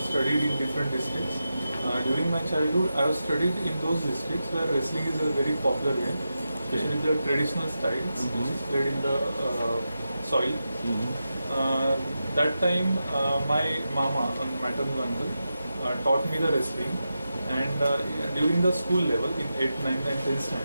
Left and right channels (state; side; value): inverted; both; correlation -0.90